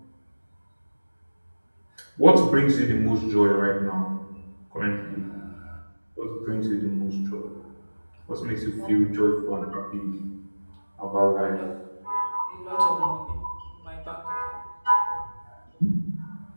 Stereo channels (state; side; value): inverted; both; correlation -1.00